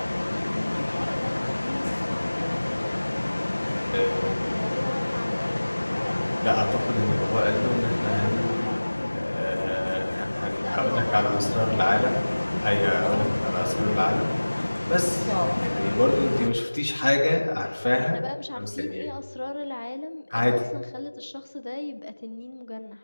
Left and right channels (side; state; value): both; inverted; correlation -1.00